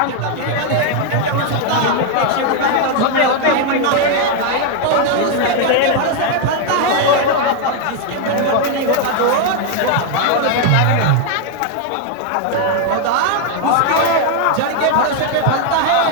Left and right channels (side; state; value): both; different; correlation 0.01